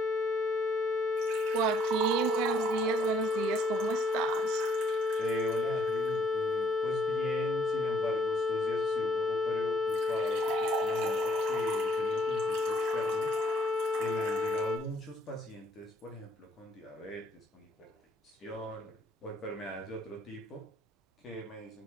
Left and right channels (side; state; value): both; normal; correlation 0.65